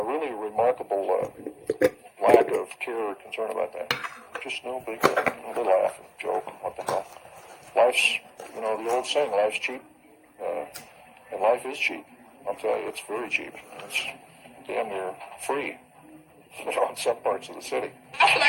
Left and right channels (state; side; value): identical; both; correlation 1.00